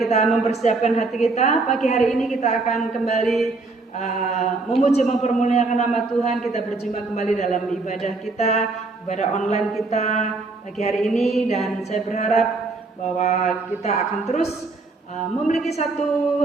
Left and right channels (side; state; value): left; quieter; 3.6 dB